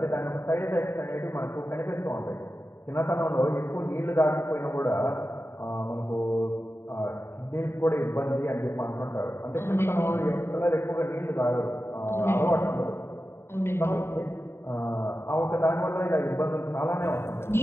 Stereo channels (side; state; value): right; late; 0.12 ms